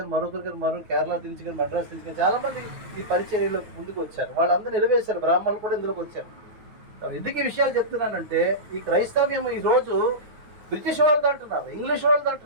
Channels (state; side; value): late; left; 9.4 ms